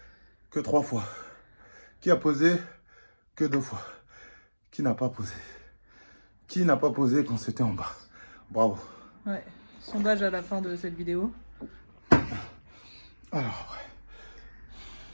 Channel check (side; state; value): both; inverted; correlation -1.00